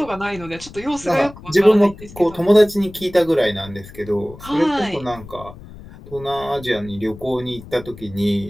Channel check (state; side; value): noise; left; rumble, 17 dB below the sound